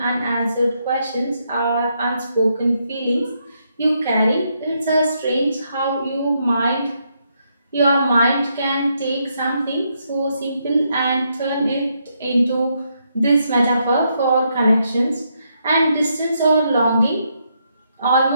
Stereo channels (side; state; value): both; inverted; correlation -0.78